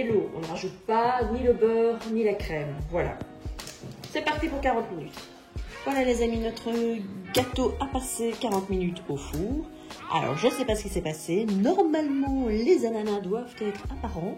l'eau. On ne rajoute pas ni le beurre, ni la crème. Voilà. C'est parti pour 40 minutes. Voilà les amis, notre gâteau a passé 40 minutes au four. Alors je ne sais pas ce qui s'est passé. Normalement les ananas doivent être apparents,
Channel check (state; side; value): identical; both; correlation 1.00